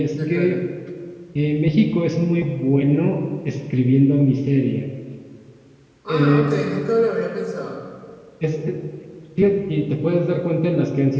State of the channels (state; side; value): identical; both; correlation 1.00